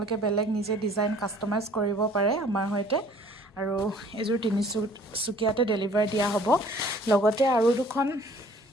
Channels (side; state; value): both; normal; correlation 0.54